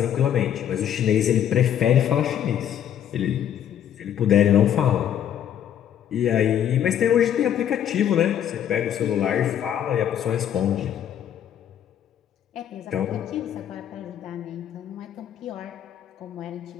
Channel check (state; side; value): quieter; right; 9.9 dB